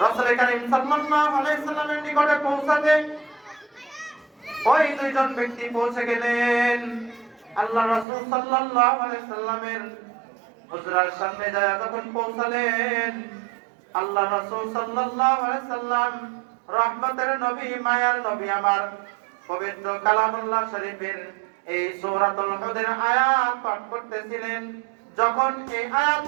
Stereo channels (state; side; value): drops out; left; at 8.1 s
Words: রাসূল কারীম সাল্লাল্লাহু আলাইহি সাল্লামের নিকটে পৌঁছাতে ওই দুইজন ব্যক্তি পৌঁছে গেলেন। আল্লাহ রাসূল সাল্লাল্লাহু আলাইহি সাল্লামের হুজরার সামনে যায় যখন পৌঁছালেন, আল্লাহ রাসূল সাল্লাল্লাহু আলাইহি সাল্লাম রহমতের নবী, মায়ার নবী আমার পবিত্র কালামুল্লাহ শরীফের এই সূরাতুল হুদের আয়াত পাঠ করতেছিলেন। যখন এই